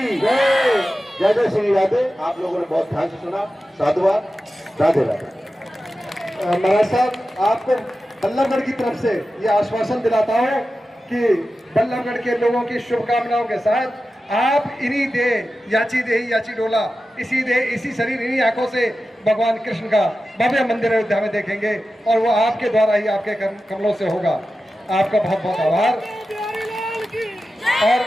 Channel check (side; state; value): both; normal; correlation 0.93